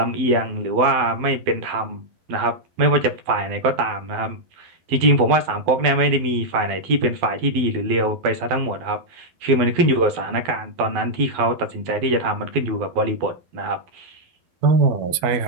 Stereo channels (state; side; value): late; left; 12 ms